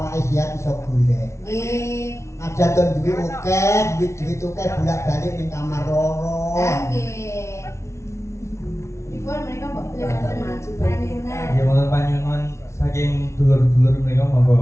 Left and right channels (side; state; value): right; late; 0.13 ms